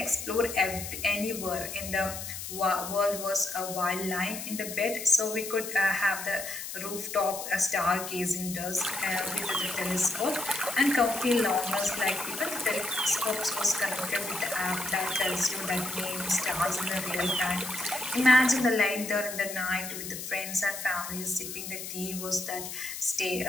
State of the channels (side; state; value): left; noise; hiss, 8 dB below the sound